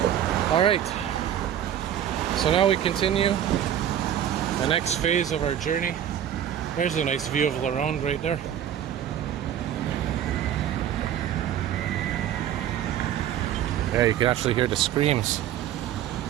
All right. So now we continue the next phase of our journey. There's a nice view of Lorone right there. Yeah, you can actually hear the screams.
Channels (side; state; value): left; quieter; 10.4 dB